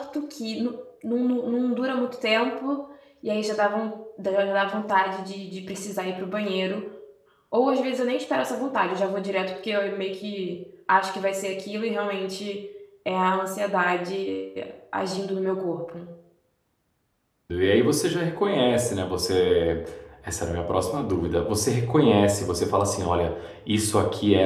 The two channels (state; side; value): identical; both; correlation 1.00